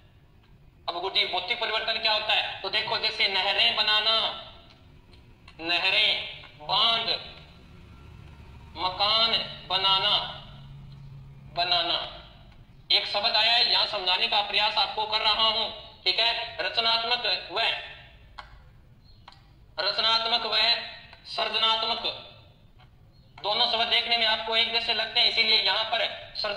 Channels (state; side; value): identical; both; correlation 1.00